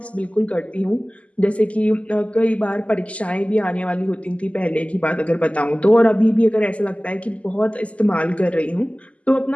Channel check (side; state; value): right; late; 0.065 ms